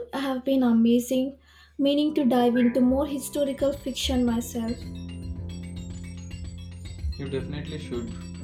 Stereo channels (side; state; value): both; identical; correlation 1.00